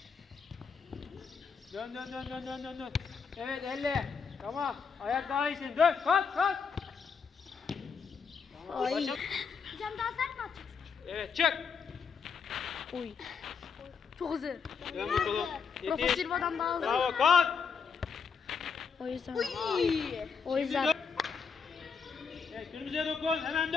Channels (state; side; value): quieter; right; 5.9 dB